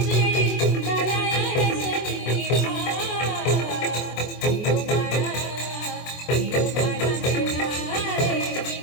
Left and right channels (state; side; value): late; right; 24 ms